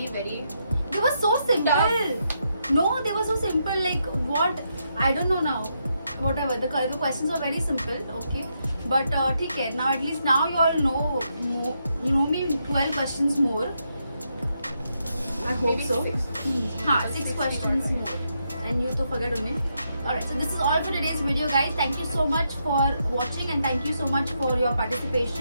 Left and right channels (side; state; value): both; inverted; correlation -0.80